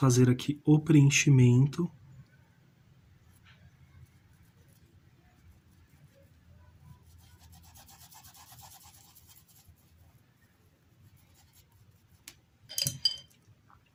aqui o preenchimento.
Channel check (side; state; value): both; identical; correlation 1.00